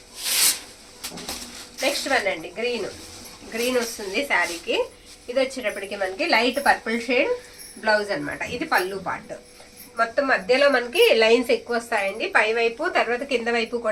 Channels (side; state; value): both; identical; correlation 1.00